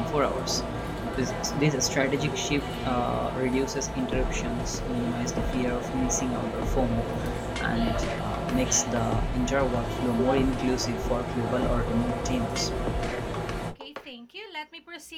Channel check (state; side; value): identical; both; correlation 1.00